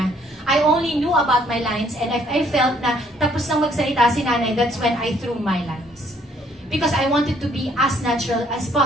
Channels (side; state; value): both; normal; correlation 0.64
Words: I only knew about my lines, and if I felt na tapos nang magsalita si Nanay, that's when I threw my lines. Because I wanted to be as natural as